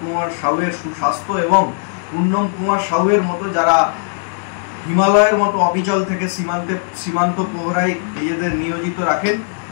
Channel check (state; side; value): silent; right; 67 dB below the other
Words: কুমার সাউয়ের সুস্বাস্থ্য এবং পূর্ণম কুমার সাউয়ের মতো যারা হিমালয়ের মতো অবিচল থেকে সীমান্ত প্রহরায় নিজেদের নিয়োজিত রাখেন,